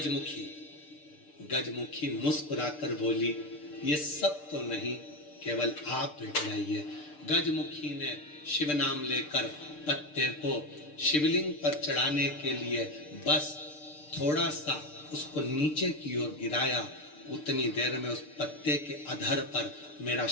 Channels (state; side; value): late; right; 6.7 ms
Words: गजमुखी मुस्कुराकर बोली, ये सब तो नहीं, केवल आप बैठ जाइए। गजमुखी ने शिव नाम लेकर पत्ते को शिवलिंग पर चढ़ाने के लिए बस थोड़ा सा उसको नीचे की ओर गिराया। उतनी देर में उस पत्ते के अधर पर मेरा